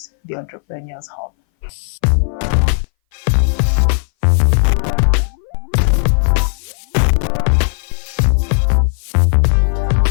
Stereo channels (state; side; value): silent; right; 62 dB below the other